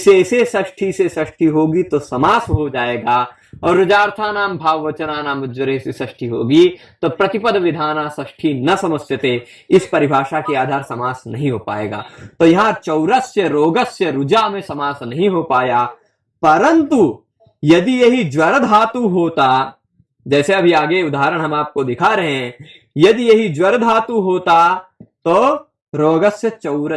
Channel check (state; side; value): identical; both; correlation 1.00